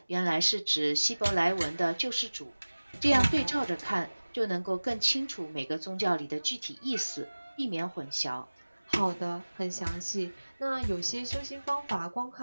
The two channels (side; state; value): both; inverted; correlation -1.00